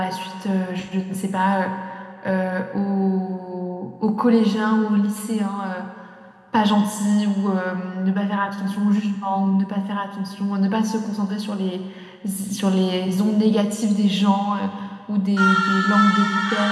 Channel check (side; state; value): both; identical; correlation 1.00